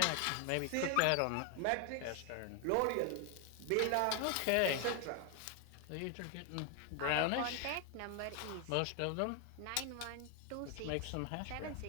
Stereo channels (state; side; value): different; both; correlation 0.00